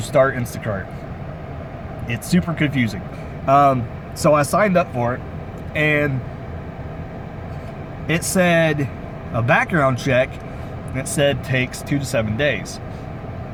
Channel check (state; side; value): identical; both; correlation 1.00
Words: start Instacart, it's super confusing. So I signed up for it, and it said a background check, and it said takes 2 to 7 days.